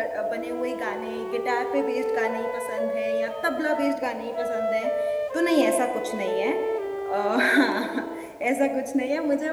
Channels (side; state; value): both; identical; correlation 1.00